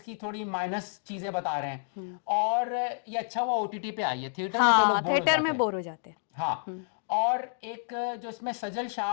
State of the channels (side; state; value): right; silent; digital silence